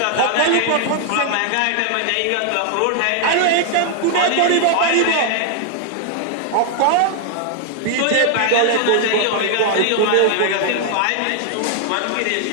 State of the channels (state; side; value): different; both; correlation 0.00